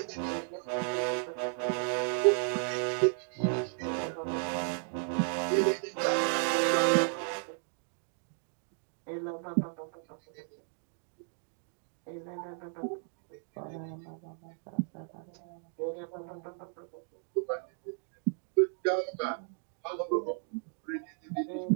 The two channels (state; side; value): silent; left; 55 dB below the other